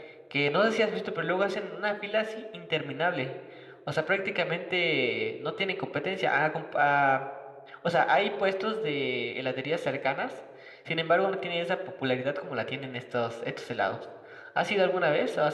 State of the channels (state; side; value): identical; both; correlation 1.00